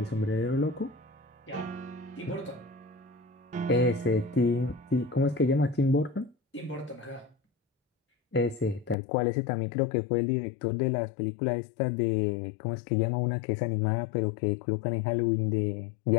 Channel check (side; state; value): right; drops out; at 9.0 s